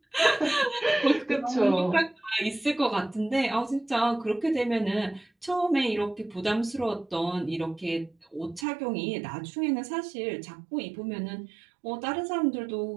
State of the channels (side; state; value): left; drops out; at 8.7 s